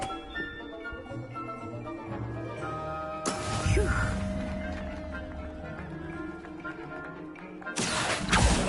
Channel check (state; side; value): identical; both; correlation 1.00